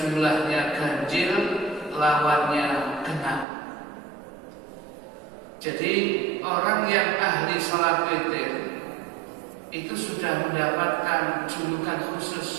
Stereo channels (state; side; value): drops out; left; at 3.5 s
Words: ganjil, lawannya genap. Jadi orang yang ahli salat witir itu sudah mendapatkan julukan